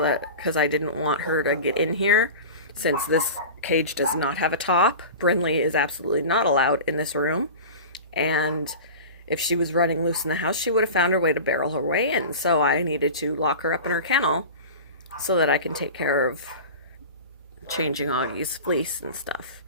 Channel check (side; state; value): both; inverted; correlation -0.33